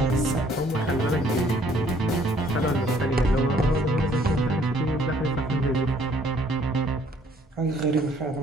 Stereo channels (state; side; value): normal; both; correlation 0.62